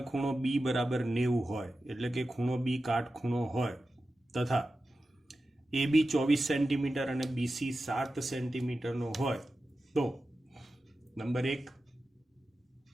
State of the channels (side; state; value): both; normal; correlation 0.93